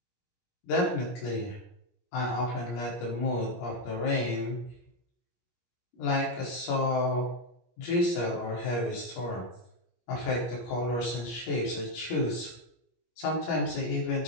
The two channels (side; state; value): right; late; 17 ms